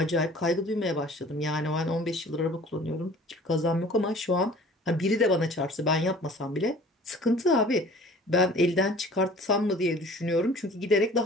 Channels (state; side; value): normal; both; correlation 0.47